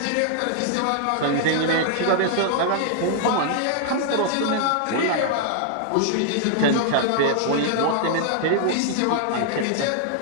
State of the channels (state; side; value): different; both; correlation 0.00